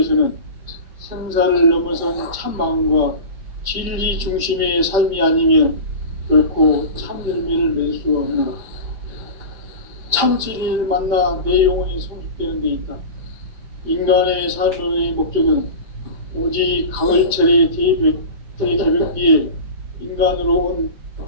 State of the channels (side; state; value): left; late; 5.0 ms